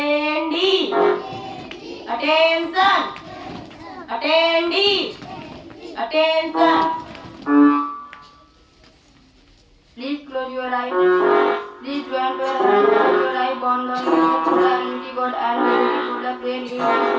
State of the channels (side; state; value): both; identical; correlation 1.00